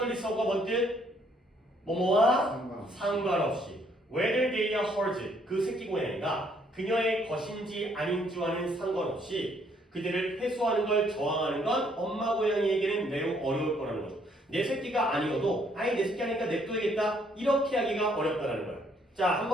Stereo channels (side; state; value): both; normal; correlation 0.67